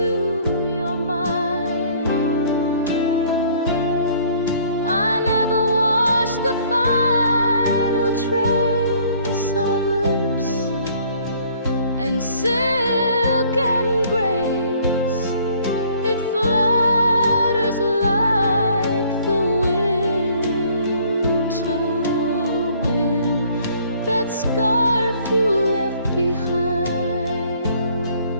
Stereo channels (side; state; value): both; inverted; correlation -0.58